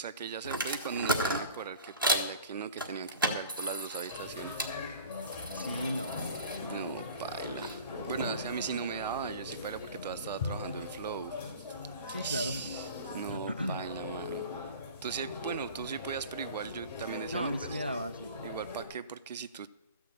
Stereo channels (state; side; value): inverted; both; correlation -0.40